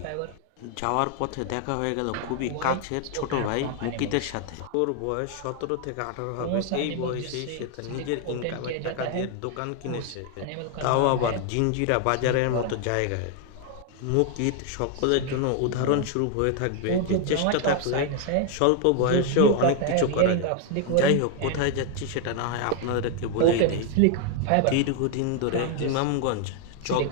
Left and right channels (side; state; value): both; different; correlation 0.00